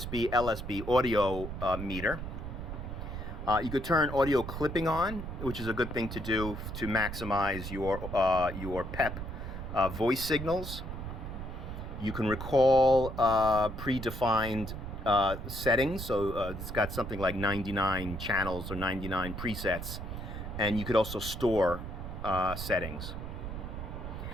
LSB audio meter. You could turn audio clipping on, which is a good thing to do to maximize your PEP voice signals. You can recall predefined settings, so it's got something like 99 channels or 99 presets, and you could also store settings.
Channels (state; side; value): noise; right; rumble, 7 dB below the sound